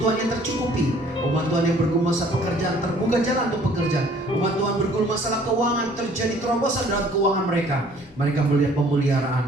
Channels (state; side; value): normal; both; correlation 0.56